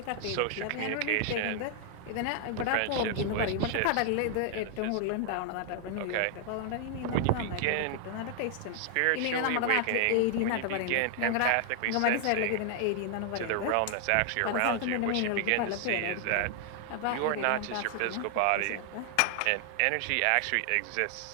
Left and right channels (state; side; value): different; both; correlation 0.00